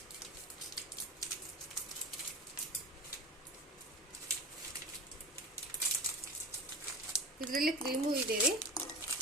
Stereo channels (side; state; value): both; normal; correlation 0.33